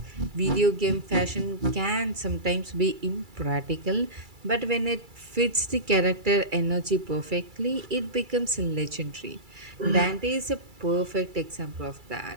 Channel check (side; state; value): left; late; 2.3 ms